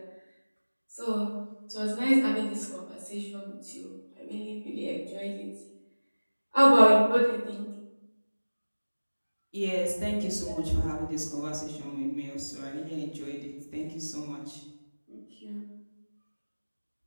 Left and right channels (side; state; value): both; inverted; correlation -1.00